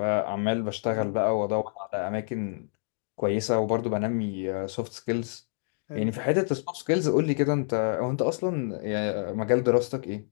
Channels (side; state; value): right; silent; digital silence